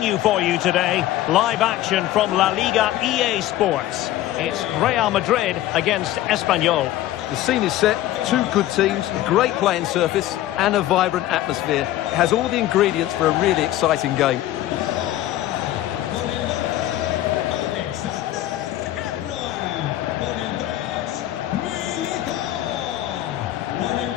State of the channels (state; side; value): quieter; right; 14.2 dB